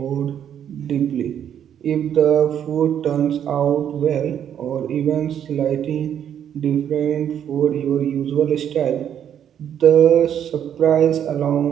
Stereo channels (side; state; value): left; quieter; 9.4 dB